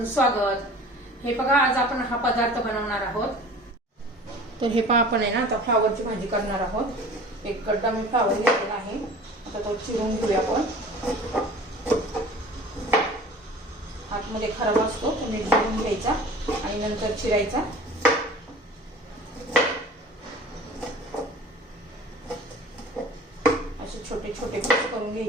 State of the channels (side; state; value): both; normal; correlation 0.43